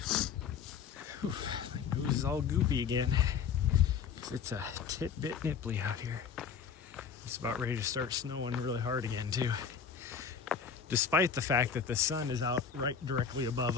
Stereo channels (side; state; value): right; quieter; 6.8 dB